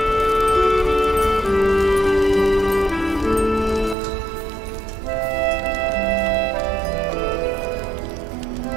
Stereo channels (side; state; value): left; drops out; at 4.0 s